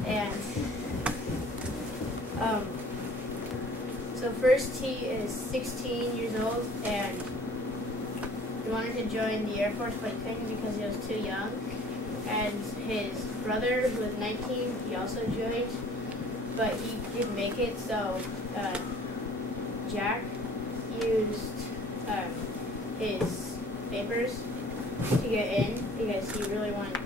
And so first he is 16 years old, and he wanted to join the Air Force, but he couldn't because he was too young. And his brother, who was 19, he also joined, but he didn't make it, so Jack used his papers to get in because he really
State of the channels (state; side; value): normal; both; correlation 0.51